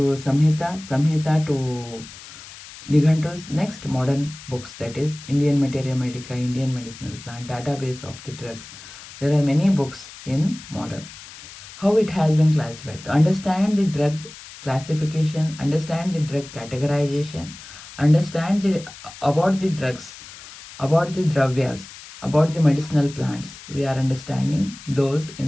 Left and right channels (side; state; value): left; noise; hiss, 16 dB below the sound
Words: Samhita, Samhita to Nighantus, next modern books, that is Indian Materia Medica, Indian Medicinal Plant, database of the drugs. There are many books in modern. How it has been classified. To understand the drug classification, understand the drug categorization, understand about the drugs, about the dravyas, about the medicinal plants. We are understanding those